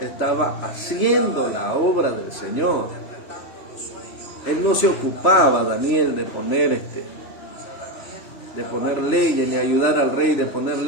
haciendo la obra del Señor. Él no se ocupaba, Daniel, de poner leyes, ni ayudar al rey de poner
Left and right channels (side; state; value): right; late; 3.1 ms